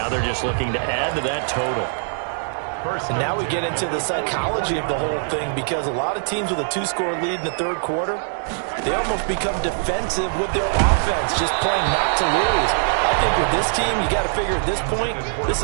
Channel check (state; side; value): silent; left; digital silence